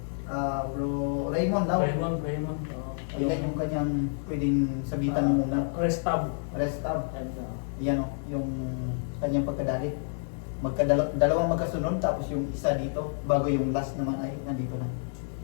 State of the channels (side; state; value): right; silent; digital silence